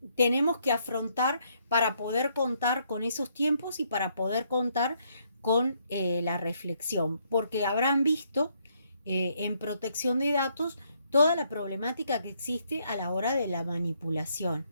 tenemos que afrontar para poder contar con esos tiempos y para poder contar con la reflexión, porque habrán visto en protección de datos toda la problemática que existe a la hora de la manipulación,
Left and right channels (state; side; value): inverted; both; correlation -0.72